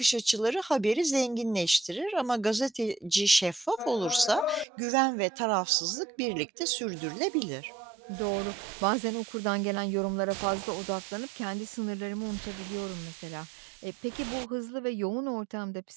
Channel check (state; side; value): drops out; left; at 4.7 s